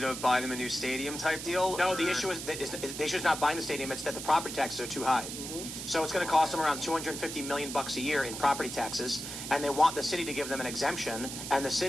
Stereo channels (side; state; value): right; noise; hiss, 7 dB below the sound